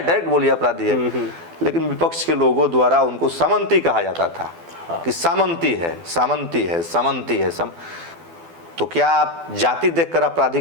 बोलिए अपराधी है। लेकिन विपक्ष के लोगों द्वारा उनको सामंती कहा जाता था कि सामंती है, सामंती है, सामंती है। तो क्या आप जाति देखकर अपराधी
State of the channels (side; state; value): left; late; 12 ms